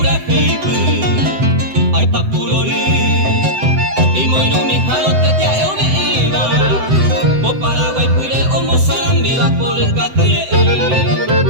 feipe, ay papurori, y moino mi jalote te ayo me iba, po Paraguay pure o Mozambique por el catre,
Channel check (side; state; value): left; late; 7.8 ms